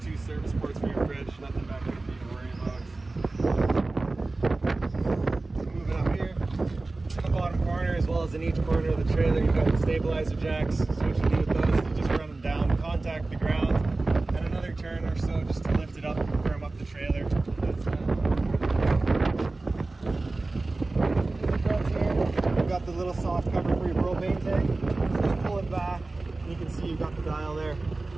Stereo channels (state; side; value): quieter; left; 3.3 dB